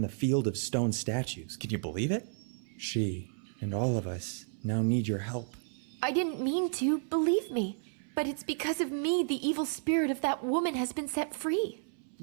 field of stone statues. Can you believe it? She and all of us now need your help. I didn't mean to, believe me. But it's because of me the evil spirit of that woman has been set free.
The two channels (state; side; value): silent; left; 56 dB below the other